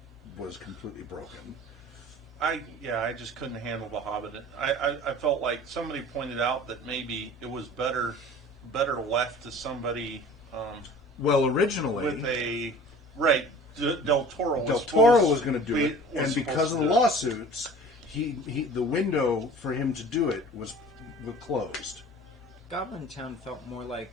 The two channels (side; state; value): both; normal; correlation 0.44